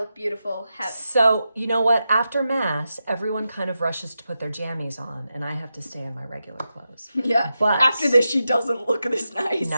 beautiful. So, you know what? After Mass, everyone kind of rushes to put their jammies on, and I have to stay in my regular clothes. Yeah, but after this, she doesn't look this nice.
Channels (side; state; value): both; inverted; correlation -0.89